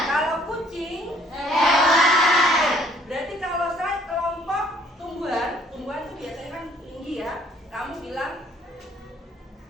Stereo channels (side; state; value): both; normal; correlation 0.60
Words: Kalau kucing, hewan. Berarti kalau saya kelompok tumbuhan itu biasanya kan tinggi ya. Kamu bilang